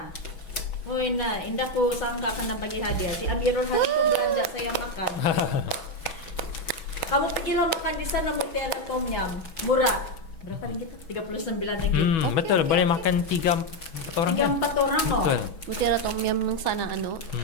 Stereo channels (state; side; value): late; right; 6.1 ms